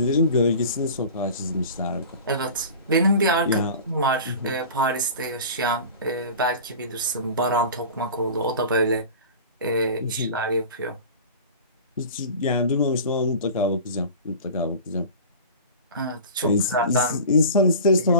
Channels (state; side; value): inverted; both; correlation -0.37